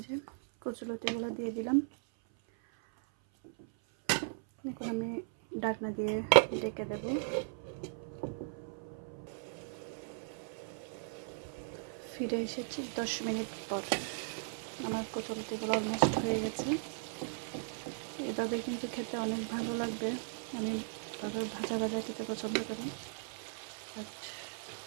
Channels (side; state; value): left; silent; 53 dB below the other